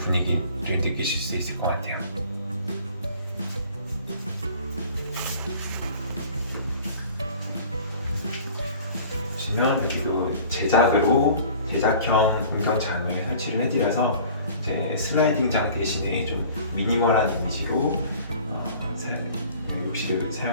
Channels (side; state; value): both; inverted; correlation -0.47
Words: 분위기를 느끼실 수 있을 것 같아요. 보시면 여기도 제작형 운전장을 설치를 해드려서 이제 슬라이딩장 대신에 좀 미니멀한 이미지로 욕실을